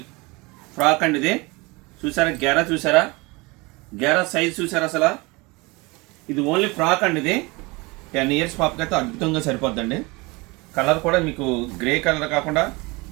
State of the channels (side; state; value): left; quieter; 25.2 dB